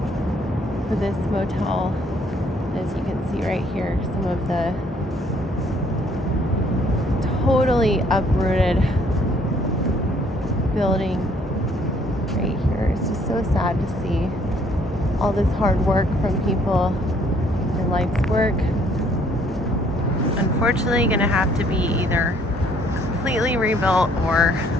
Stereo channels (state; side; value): normal; both; correlation 0.63